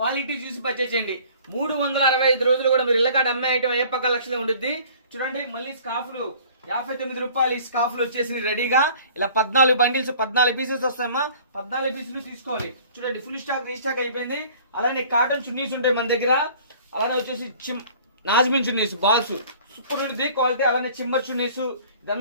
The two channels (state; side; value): inverted; both; correlation -0.50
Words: చూసి పర్చేజ్ చేయండి. 365 రోజులు కూడా మీరు ఇళ్ళకాడ అమ్మే ఐటమ్ అయ్యప్ప కలెక్షన్ లో ఉంటుంది. చూడండి, మళ్ళీ స్కాఫ్లు 59 రూపాయలు. ఈ స్కాఫ్లు వచ్చేసి రెడీగా ఇలా 14 బండిల్స్, 14 పీసెస్ వస్తాయమ్మా. 14 పీసులు తీసుకోవాలి. చూడండి, ఫుల్ స్టాక్ రీస్టాక్ అయిపోయింది. అలానే కాటన్ చున్నీస్ ఉంటాయి మన దగ్గర. అలానే వచ్చేసి నాజ్మిన్ చున్నీస్ బాల్స్ సూపర్ ఉంటుంది క్వాలిటీ. అలానే చిమ్మర్ చున్నీస్,